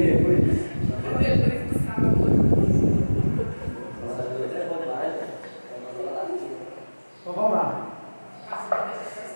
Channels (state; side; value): inverted; both; correlation -1.00